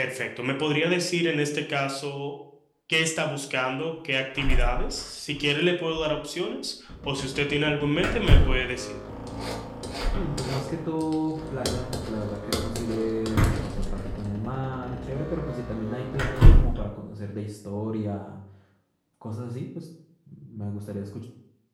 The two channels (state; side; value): identical; both; correlation 1.00